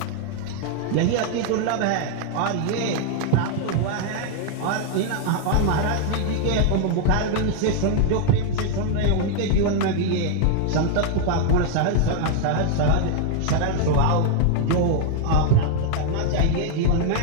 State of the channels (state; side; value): different; both; correlation 0.00